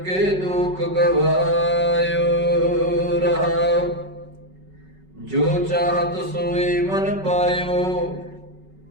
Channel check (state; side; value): late; left; 5.3 ms